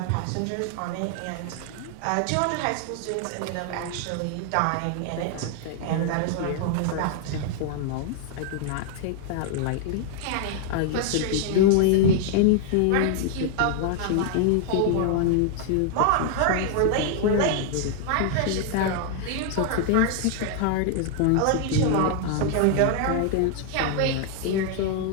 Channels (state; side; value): different; both; correlation 0.00